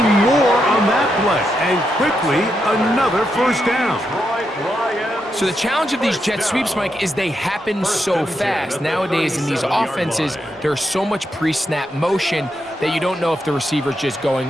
more on that play. And quickly, another first down. So the challenge of these jet sweeps, Mike, is they happen so fast. Nowadays in these offenses, there's so much pre-snap motion that you don't know if the receiver's just going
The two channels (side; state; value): both; normal; correlation 0.83